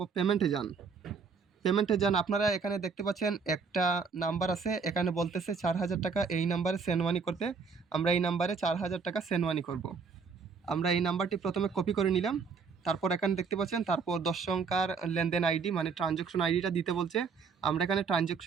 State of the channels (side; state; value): left; quieter; 5.3 dB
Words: পেমেন্টে যান। পেমেন্টে যান, আপনারা এখানে দেখতে পাচ্ছেন একটা নাম্বার আছে, এখানে বলতেছে ৪,০০০ টাকা এই নাম্বারে সেন্ড মানি করতে। আমরা এই নাম্বারে ৪,০০০ টাকা সেন্ড মানি করব। আমরা এই নাম্বারটি প্রথমে কপি করে নিলাম। তারপর এখানে দেখতে পাচ্ছেন, তারপর ১০ সংখ্যার লেনদেন আইডি মানে ট্রানজ্যাকশন আইডিটা দিতে বলছে। আমরা এখানে